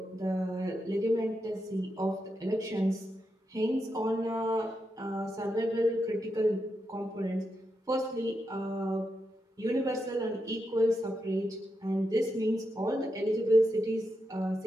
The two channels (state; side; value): normal; both; correlation 0.85